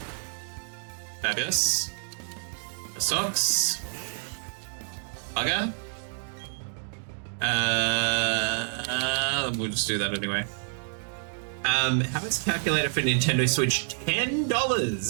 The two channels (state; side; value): silent; left; digital silence